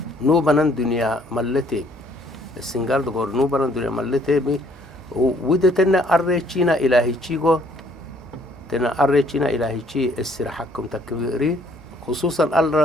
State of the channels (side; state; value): both; normal; correlation 0.63